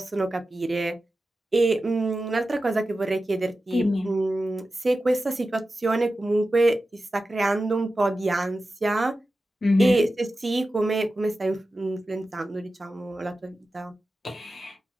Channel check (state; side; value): normal; both; correlation 0.93